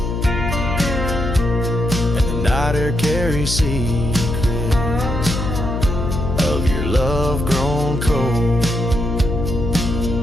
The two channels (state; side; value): noise; left; hum, 3 dB below the sound